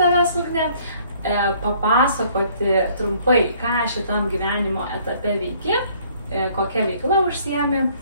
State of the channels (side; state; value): both; inverted; correlation -0.60